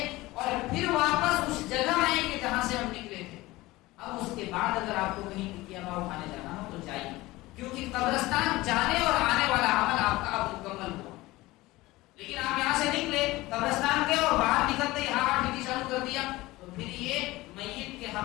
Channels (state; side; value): quieter; right; 19.4 dB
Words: اور پھر واپس اس جگہ آئیں گے جہاں سے ہم نکلے تھے. اب اس کے بعد اگر آپ کو کہیں ٹکیا ہوا اٹھانے جانا ہو تو جائیے, کیونکہ قبرستان جانے اور آنے والا عمل آپ کا اب مکمل ہوا. لیکن آپ یہاں سے نکلے, قبرستان گئے اور باہر نکلتے ہی ہاتھ ٹھیک شروع کر دیا, تو پھر یہ میت کے